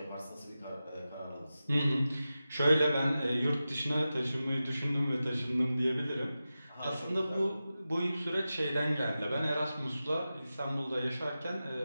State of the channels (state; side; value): inverted; both; correlation -0.93